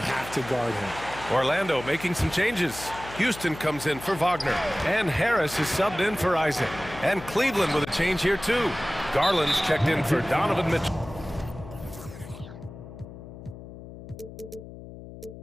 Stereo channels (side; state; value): left; noise; hum, 14 dB below the sound